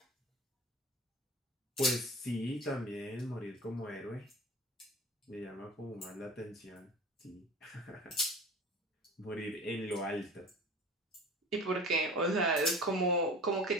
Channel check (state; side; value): normal; both; correlation 0.38